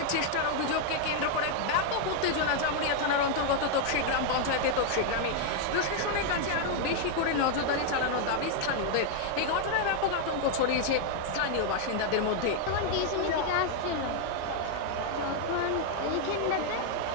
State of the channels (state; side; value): different; both; correlation 0.00